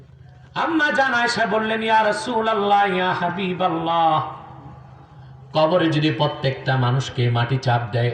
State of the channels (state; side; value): identical; both; correlation 1.00